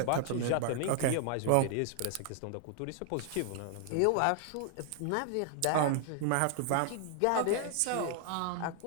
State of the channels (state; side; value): different; both; correlation 0.00